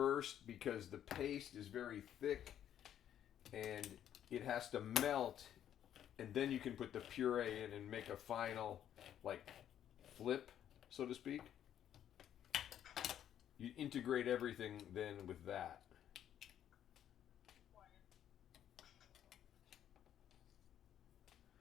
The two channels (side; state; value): right; quieter; 10.4 dB